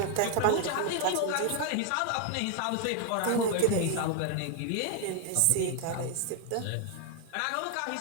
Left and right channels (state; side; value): different; both; correlation 0.00